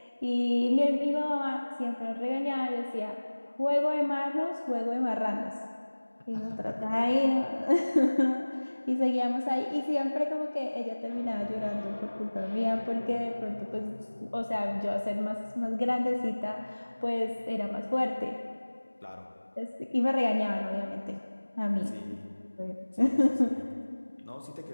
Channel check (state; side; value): inverted; both; correlation -1.00